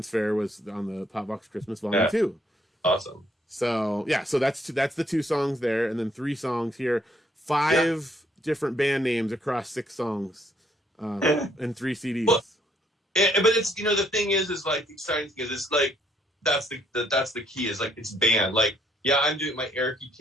Fair was on the Pop Vox Christmas Volume 2. Awesome. So yeah, so that's the 2 songs there, and then 3 songs here, 5 different band names across 6 songs, and 3 CDs. Well, but it's the thing is like the exciting thing is it's like that's the key is like it's band. Like I'm doing my Eric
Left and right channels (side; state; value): both; normal; correlation 0.69